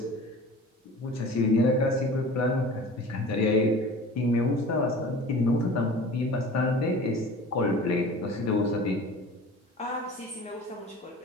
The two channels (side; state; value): both; normal; correlation 0.40